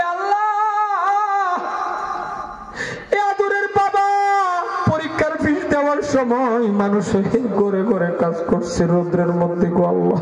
আল্লাহ এ আদরের বাবা পরীক্ষার ফিস দেওয়ার সময় মানুষের ঘরে ঘরে কাজ করছে রৌদ্রের মধ্যে গো আল্লাহ।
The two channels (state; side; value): identical; both; correlation 1.00